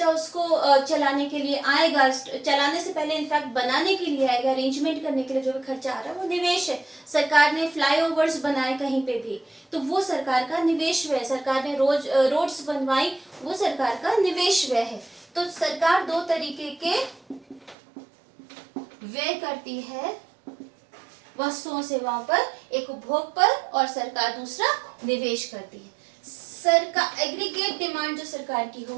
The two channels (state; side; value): drops out; left; at 17.8 s